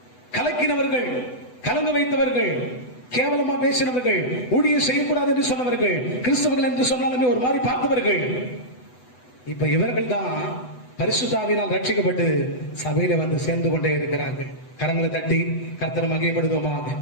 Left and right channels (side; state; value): right; late; 8.0 ms